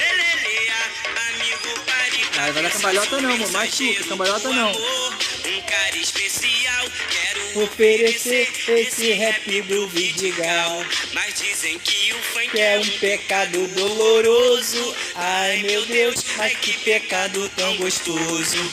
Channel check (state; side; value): identical; both; correlation 1.00